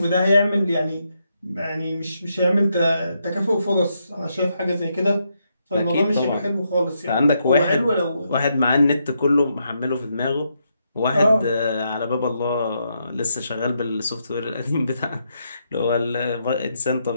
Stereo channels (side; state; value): both; inverted; correlation -0.80